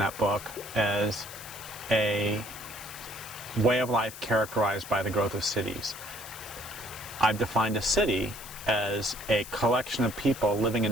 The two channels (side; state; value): left; noise; hiss, 14 dB below the sound